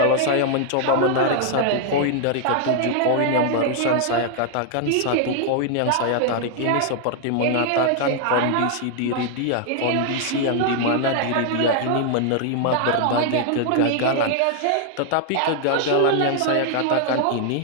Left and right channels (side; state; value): both; different; correlation 0.00